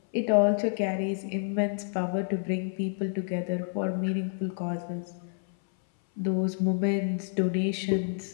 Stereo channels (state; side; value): silent; right; 59 dB below the other